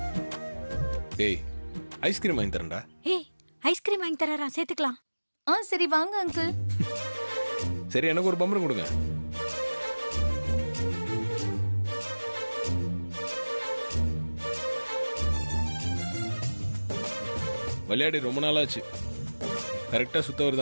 டேய், ஐஸ்கிரீம் வாங்கி தரேன்டா. ஏய், ஐஸ்கிரீம் வாங்கி தரறா, சேர்த்துக்கலாம். சரி வாங்க அங்கிள். சரி, எனக்கு ஒரு பம்பரம் கொடுங்க. விளையாடி ரொம்ப நாளாச்சு. கரெக்டா சுத்த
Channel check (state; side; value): inverted; both; correlation -1.00